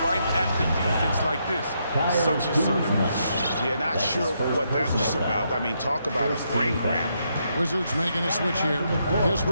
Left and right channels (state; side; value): inverted; both; correlation -0.78